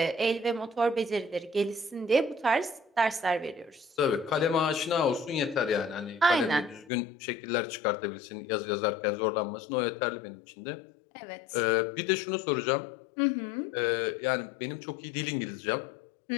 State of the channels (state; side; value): drops out; right; at 6.9 s